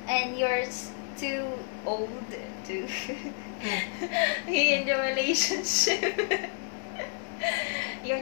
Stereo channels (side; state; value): right; silent; 58 dB below the other